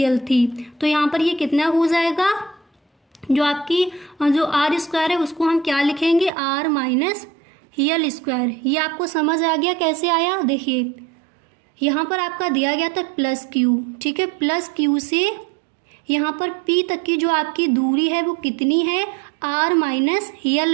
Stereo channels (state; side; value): drops out; left; at 6.3 s